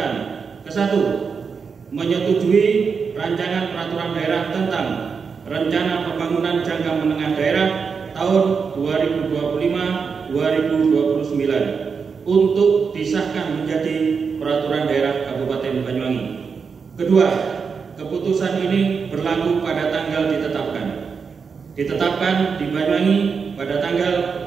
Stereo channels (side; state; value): left; quieter; 5.6 dB